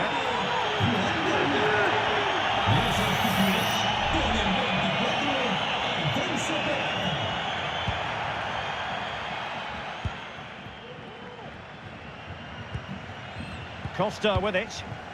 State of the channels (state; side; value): identical; both; correlation 1.00